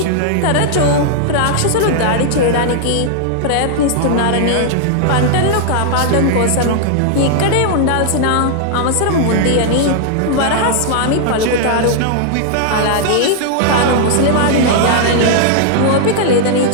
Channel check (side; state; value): both; different; correlation -0.01